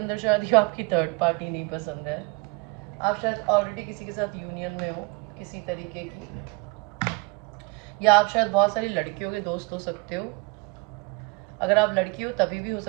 शायद आपकी थर्ड पार्टी नहीं पसंद है। आप शायद ऑलरेडी किसी के साथ यूनियन में हो किसी तरीके की, या आप शायद बहुत सारी लड़कियों के दोस्त हो सकते हो। अगर आप लड़की हो तभी भी हो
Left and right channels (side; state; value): left; quieter; 28.8 dB